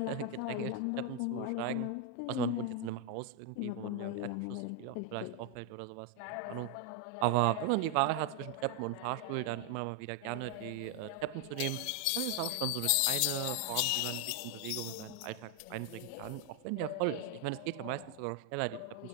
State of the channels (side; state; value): both; different; correlation 0.01